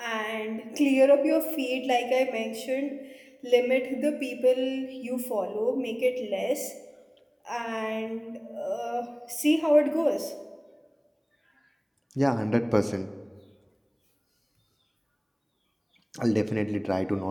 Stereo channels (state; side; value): identical; both; correlation 1.00